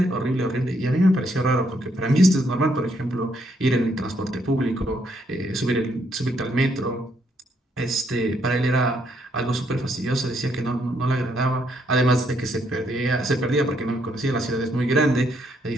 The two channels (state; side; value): normal; both; correlation 0.73